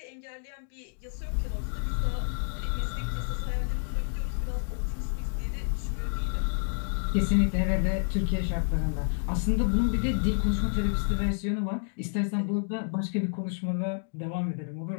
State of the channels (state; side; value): silent; right; digital silence